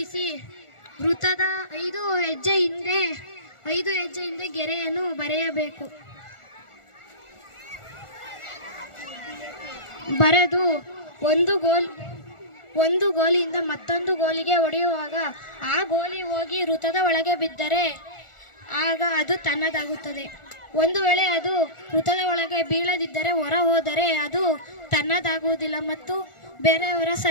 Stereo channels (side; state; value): right; late; 1.4 ms